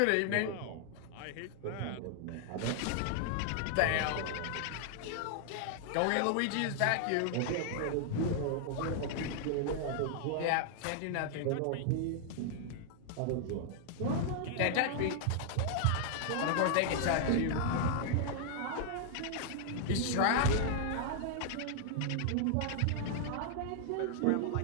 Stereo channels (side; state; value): both; different; correlation 0.00